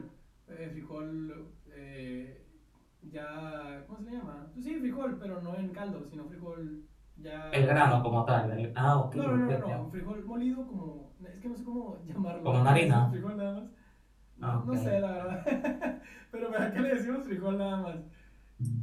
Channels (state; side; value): identical; both; correlation 1.00